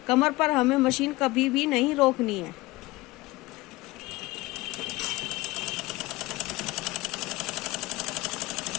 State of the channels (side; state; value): right; quieter; 20.5 dB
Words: कमर पर हमें मशीन कभी भी नहीं रोकनी है।